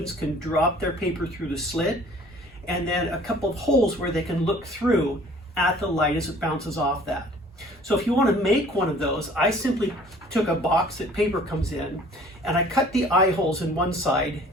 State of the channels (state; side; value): normal; both; correlation 0.52